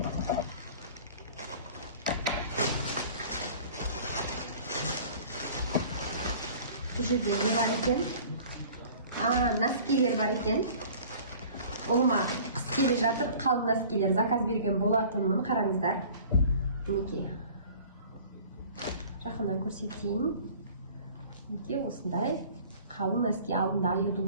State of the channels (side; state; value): both; inverted; correlation -0.47